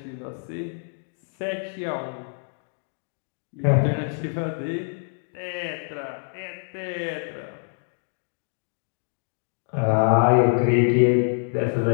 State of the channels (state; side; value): silent; right; digital silence